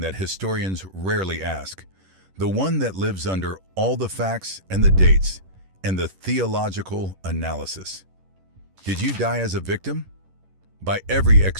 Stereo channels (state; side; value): late; left; 11 ms